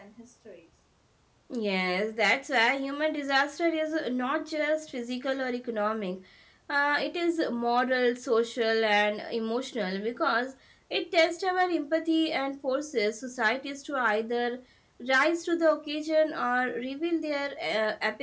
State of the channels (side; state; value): both; identical; correlation 1.00